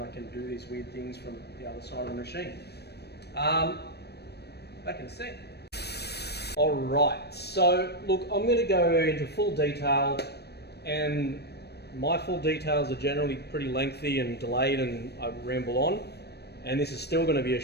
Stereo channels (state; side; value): late; right; 0.47 ms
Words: can do these weird things from the other side of the machine. Back in a sec. Alright, so look, I'm going to go into full detail, and my full details are generally pretty lengthy and delayed and I ramble on, and this is still going to be a